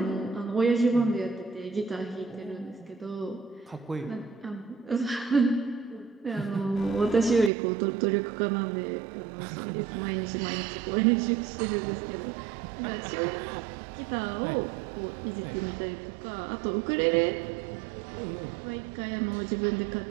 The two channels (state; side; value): drops out; left; at 7.5 s